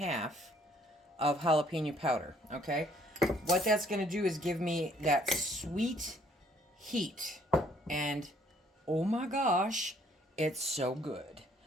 of jalapeno powder, okay? What that's going to do is give me that sweet heat. And, oh my gosh, it's so good.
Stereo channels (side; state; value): both; normal; correlation 0.63